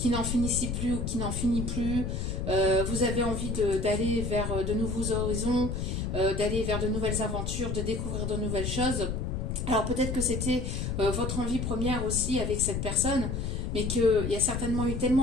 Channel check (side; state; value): left; noise; rumble, 2 dB below the sound